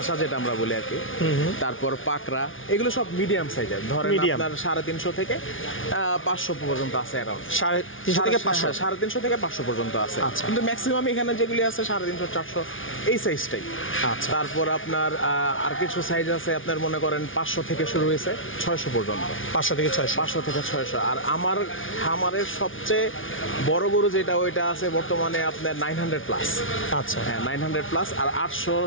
যেটা আমরা বলি আর কি। তারপর পাকড়া, এগুলো সব মিডিয়াম সাইজের, ধরেন আপনার 350 থেকে 500 পর্যন্ত আছে। অ্যারাউন্ড 350 থেকে 500 পর্যন্ত আছে, কিন্তু ম্যাক্সিমাম এখানে যেগুলি আছে 350 400 এই সাইজটাই। আচ্ছা, তারপর আপনার আর কিছু সাইজ আছে আপনার মনে করেন 500 থেকে শুরু হয়েছে 600 পর্যন্ত। 500 থেকে 600। আর আমার খামারের সবচেয়ে বড় গরু যেটা, ওইটা আছে বর্তমানে আপনার 900 প্লাস। আচ্ছা, হ্যাঁ 900 প্লাস, আর 800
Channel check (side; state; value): right; late; 0.57 ms